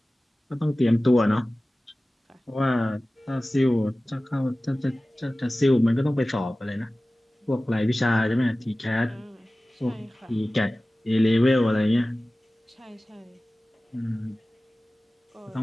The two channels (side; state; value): both; normal; correlation 0.97